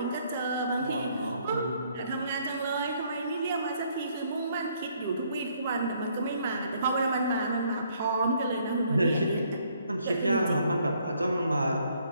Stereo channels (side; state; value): both; inverted; correlation -0.67